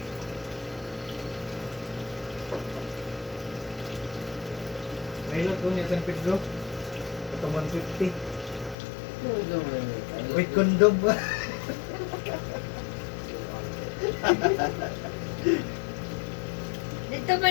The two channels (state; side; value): drops out; right; at 8.8 s